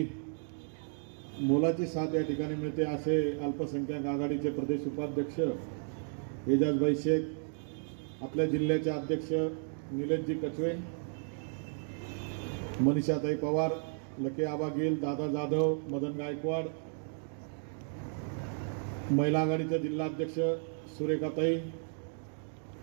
मोलाची साथ या ठिकाणी मिळते असे अल्पसंख्याक आघाडीचे प्रदेश उपाध्यक्ष एजाजभाई शेख, आपल्या जिल्ह्याचे अध्यक्ष निलेशजी कचवे, मनीषाताई पवार, लके आबा गिल, दादा जाधव, मदन गायकवाड, महिला आघाडीच्या जिल्हाध्यक्ष सुरेखाताई,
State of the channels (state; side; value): silent; left; 55 dB below the other